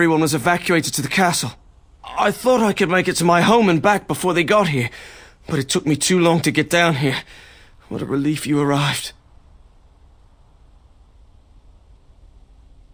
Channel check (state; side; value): identical; both; correlation 1.00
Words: was evacuated to the castle, I thought I could make it to my home and back before they got here, but it took me too long to get down here. What a relief you arrived.